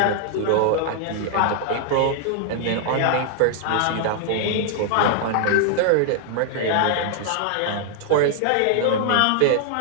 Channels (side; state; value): both; different; correlation 0.00